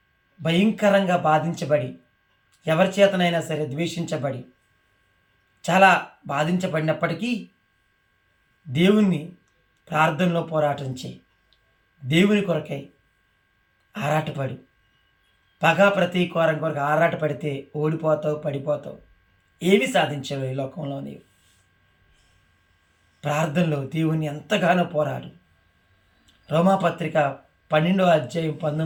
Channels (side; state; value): both; identical; correlation 1.00